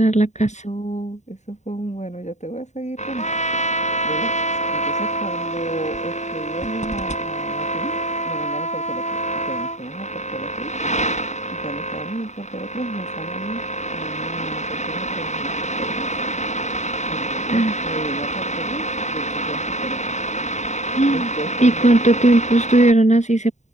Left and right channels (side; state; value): right; late; 0.34 ms